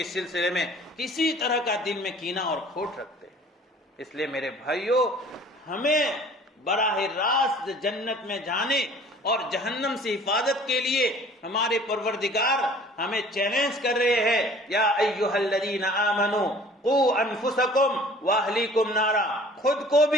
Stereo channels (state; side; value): normal; both; correlation 0.50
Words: سلسلے میں کسی طرح کا دل میں کینہ اور کھوٹ رکھتے ہیں۔ اس لیے میرے بھائیوں، ہمیں براہ راست جنت میں جانے اور جہنم سے حفاظت کے لیے ہمارے پروردگار ہمیں چیلنج کر رہے ہیں، یا ایھا الذین آمنوا قوا انفسکم واہلیکم نارا، خود کو